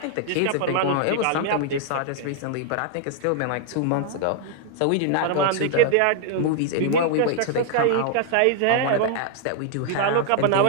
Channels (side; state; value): both; different; correlation -0.01